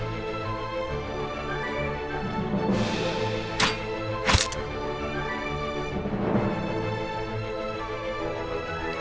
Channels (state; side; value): identical; both; correlation 1.00